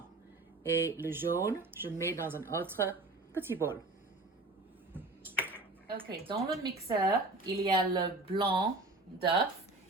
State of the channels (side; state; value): left; quieter; 3.1 dB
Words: Et le jaune, je mets dans un autre petit bol. Ok, dans le mixeur, il y a le blanc d'œuf